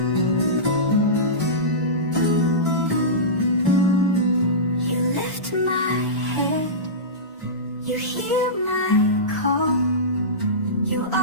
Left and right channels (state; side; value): normal; both; correlation -0.18